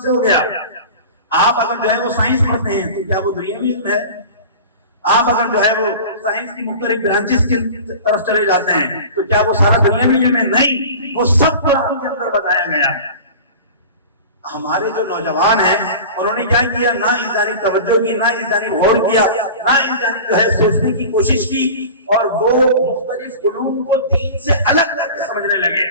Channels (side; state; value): both; inverted; correlation -0.36